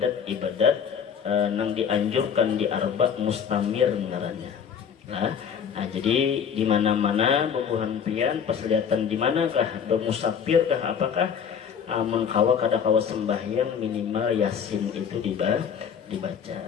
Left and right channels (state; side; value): quieter; right; 7.4 dB